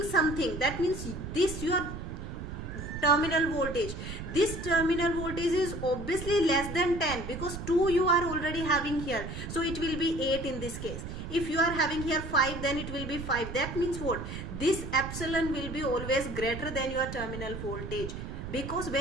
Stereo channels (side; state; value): right; noise; rumble, 8 dB below the sound